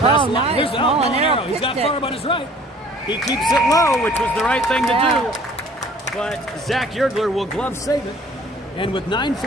the line. Here's Molinaro. He's got Farb on his right. He keeps it low, which was the right thing to do. But Zach Yergler will glove save it. And with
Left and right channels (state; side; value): normal; both; correlation 0.53